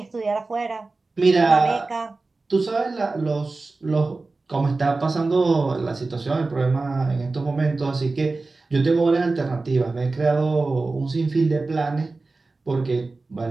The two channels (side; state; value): left; quieter; 3.6 dB